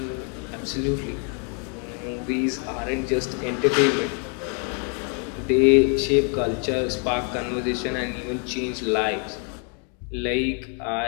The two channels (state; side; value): quieter; right; 39.8 dB